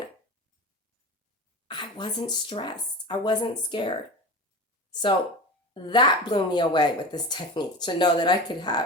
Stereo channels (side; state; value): both; normal; correlation 0.29